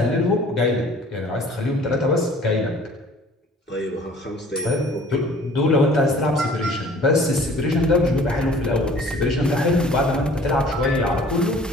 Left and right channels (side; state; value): both; normal; correlation 0.51